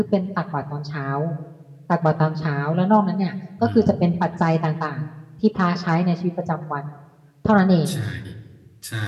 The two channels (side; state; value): both; identical; correlation 1.00